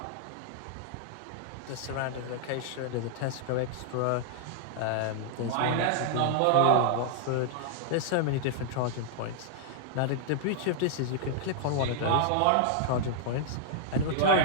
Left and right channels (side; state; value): both; different; correlation -0.01